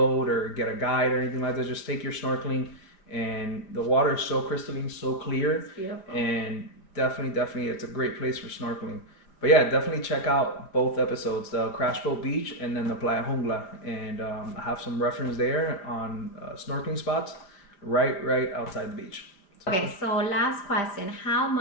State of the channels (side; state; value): right; late; 5.1 ms